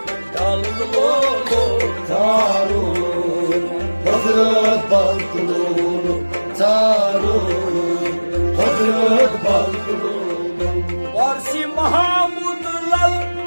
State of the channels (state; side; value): inverted; both; correlation -1.00